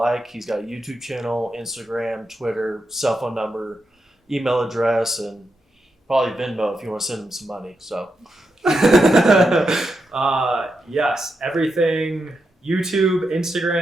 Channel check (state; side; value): normal; both; correlation 0.85